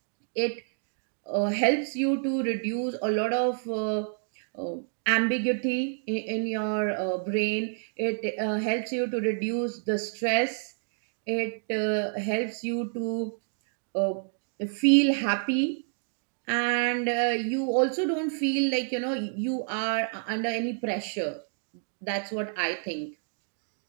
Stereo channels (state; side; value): silent; left; digital silence